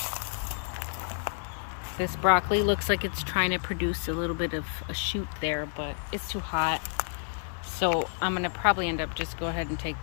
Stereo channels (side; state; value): right; silent; 58 dB below the other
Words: This broccoli looks like it's trying to produce a little bit of a shoot there, but it's too hot. So I'm going to probably end up just go ahead and take